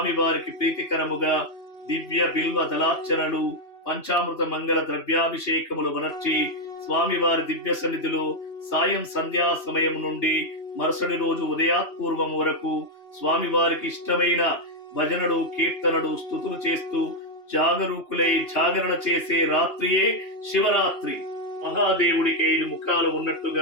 ప్రీతికరముగా దివ్య బిల్వ దళార్చనలు, పంచామృత మంగళ ద్రవ్యాభిషేకములు వనర్చి స్వామివారి దివ్య సన్నిధిలో సాయం సంధ్యా సమయం నుండి మరుసటి రోజు ఉదయాత్పూర్వం వరకు స్వామివారికి ఇష్టమైన భజనలు, కీర్తనలు, స్తుతులు చేస్తూ జాగరూకులై జాగరణ చేసే రాత్రియే శివరాత్రి. మహాదేవుడికి 5 ముఖాలు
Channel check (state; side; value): late; right; 2.9 ms